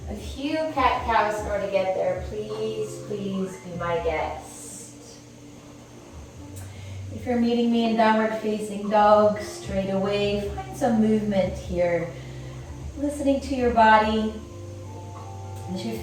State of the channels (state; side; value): identical; both; correlation 1.00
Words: a few cat-cows in order to get there, please be my guest. If you're meeting me in downward facing dog, straight away, find some movement here. Listening to your body as you